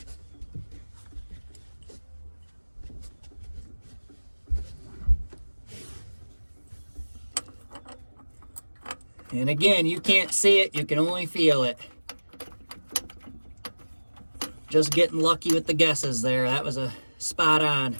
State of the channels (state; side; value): inverted; both; correlation -1.00